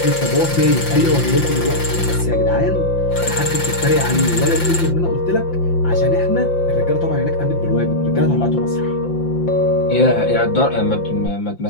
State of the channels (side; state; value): right; late; 5.8 ms